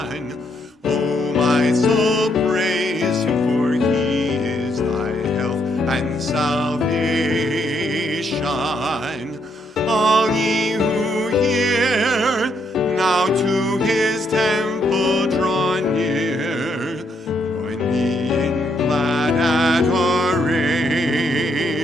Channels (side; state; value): both; normal; correlation 0.74